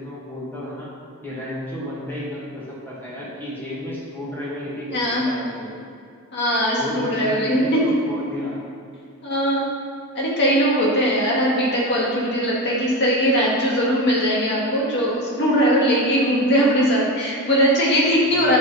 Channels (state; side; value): normal; both; correlation 0.22